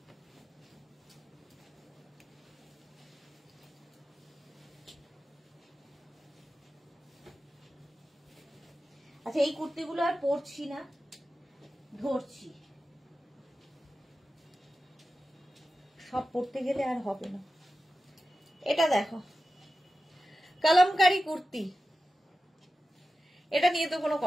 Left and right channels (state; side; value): normal; both; correlation 0.93